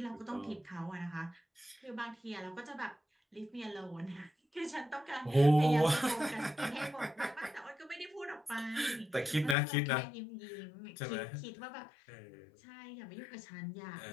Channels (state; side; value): drops out; right; at 9.6 s